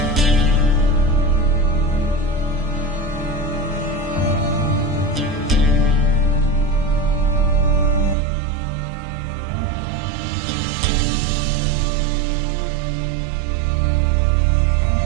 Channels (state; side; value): drops out; left; at 8.2 s